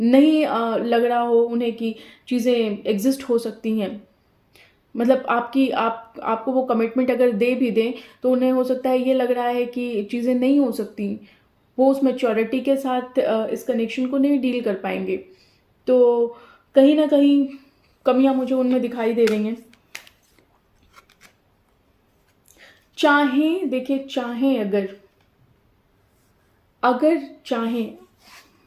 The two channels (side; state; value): both; identical; correlation 1.00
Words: नहीं लग रहा हो उन्हें कि चीज़ें एग्जिस्ट हो सकती हैं। मतलब आपको वो कमिटमेंट अगर दे भी दें तो उन्हें हो सकता है ये लग रहा है कि चीज़ें नहीं हो सकती, वो उस मैच्योरिटी के साथ इस कनेक्शन को नहीं डील कर पाएंगे। तो कहीं ना कहीं कमियां मुझे उनमें दिखाई दे रही हैं। देखिए चाहें अगर चाहें,